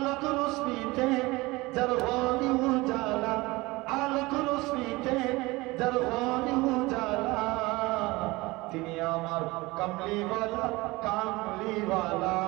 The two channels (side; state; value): left; quieter; 21.9 dB